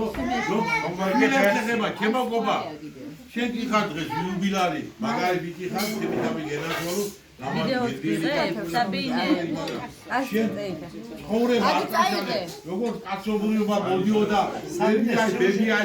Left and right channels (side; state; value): both; identical; correlation 1.00